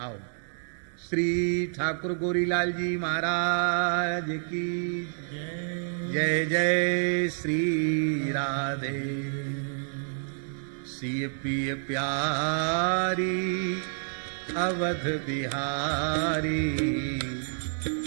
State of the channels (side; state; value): left; silent; digital silence